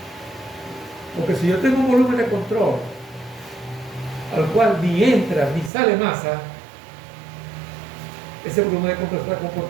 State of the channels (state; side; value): drops out; left; at 5.7 s